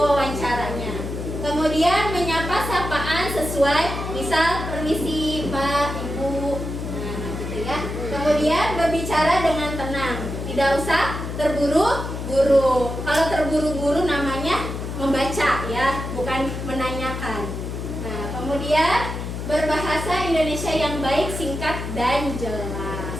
Kemudian menyapa sapaan sesuai, misal permisi Pak, Ibu, nah gitu ya. Kemudian berbicara dengan tenang, tidak usah terburu-buru. Kalau terburu-buru namanya membaca ya, bukan menanyakan. Nah, kemudian berbahasa Indonesia yang baik, singkat, dan jelas.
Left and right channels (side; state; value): left; noise; hum, 6 dB below the sound